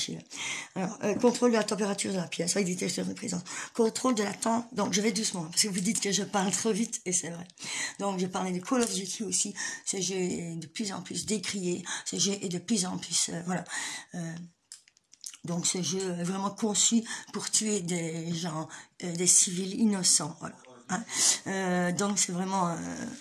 Alors, contrôle de la température de la pièce avec détecteur de présence. Contrôle de la temps. Donc, je vais doucement parce que vous dites que je parle trop vite et c'est vrai. Donc, je parlais de Call of Duty aussi. Ce jeu est de plus en plus décrié. Ce jeu est de plus en plus, voilà. Donc ce jeu est vraiment conçu pour tuer des gens, des civils innocents, voilà. Hein. Donc c'est vraiment,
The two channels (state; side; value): identical; both; correlation 1.00